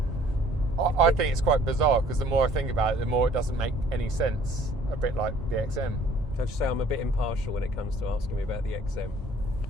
I think it's quite bizarre because the more I think about it, the more it doesn't make any sense. A bit like the XM. Can I just say I'm a bit impartial when it comes to asking me about the XM.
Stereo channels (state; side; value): normal; both; correlation 0.56